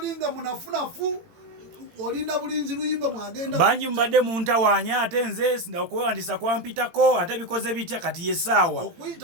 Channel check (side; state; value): left; late; 18 ms